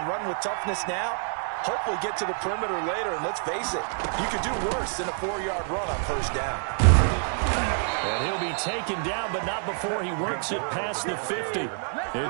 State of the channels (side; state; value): left; silent; 60 dB below the other